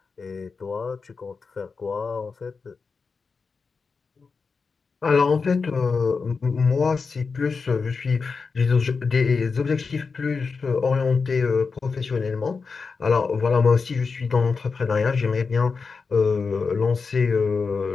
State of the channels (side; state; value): right; quieter; 4.9 dB